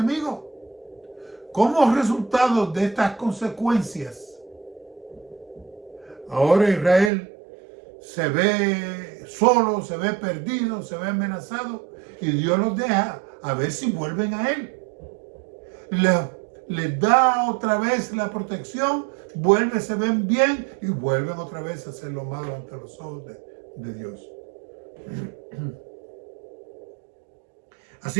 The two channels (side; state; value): left; drops out; at 7.1 s